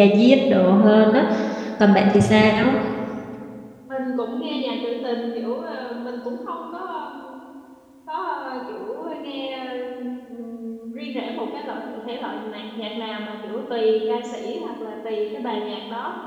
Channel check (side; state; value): both; identical; correlation 1.00